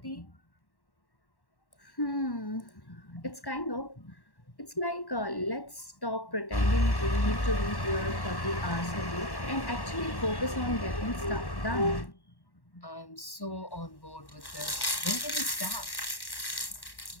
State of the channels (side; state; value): right; late; 1.1 ms